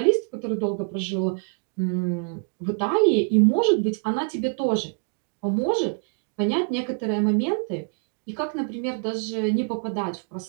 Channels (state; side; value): quieter; left; 36.9 dB